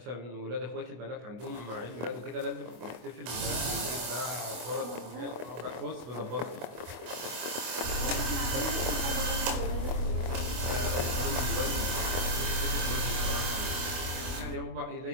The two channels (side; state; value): left; late; 25 ms